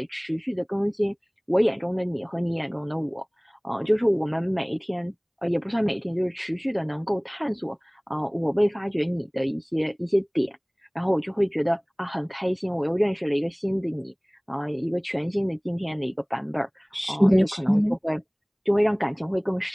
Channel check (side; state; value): both; identical; correlation 1.00